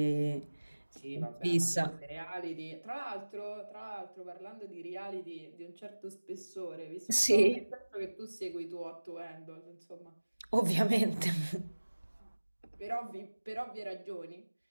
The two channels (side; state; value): both; inverted; correlation -1.00